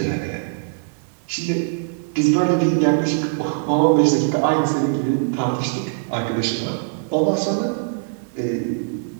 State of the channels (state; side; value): silent; left; digital silence